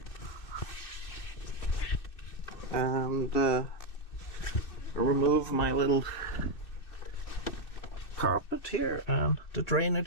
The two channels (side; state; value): right; late; 2.6 ms